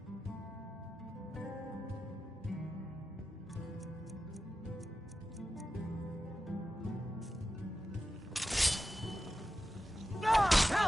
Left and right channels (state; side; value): normal; both; correlation 0.92